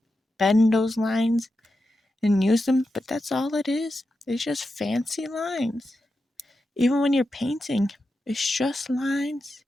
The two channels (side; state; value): both; normal; correlation 0.89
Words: bend those lines and use them, but that's all it is. It's just fancy lines. Even when you're painting, it's just lines.